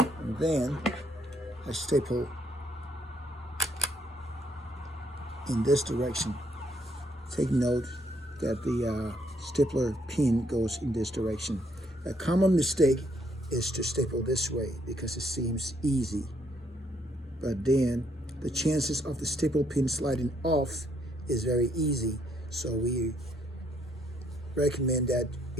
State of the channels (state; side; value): normal; both; correlation 0.71